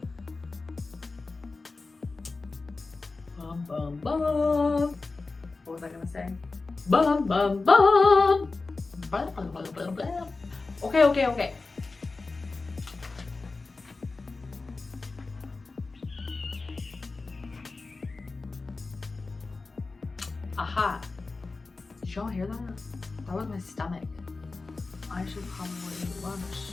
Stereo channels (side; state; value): right; quieter; 3.8 dB